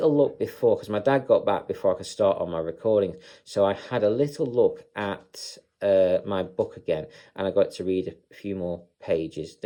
look before, because my dad got back before I could start on my recordings. So I had a little look at my book again, and I got to read a few more pages.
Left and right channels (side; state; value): both; identical; correlation 1.00